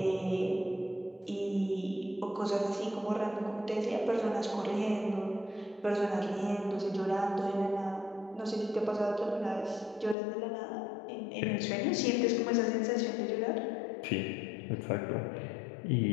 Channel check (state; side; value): drops out; right; at 10.2 s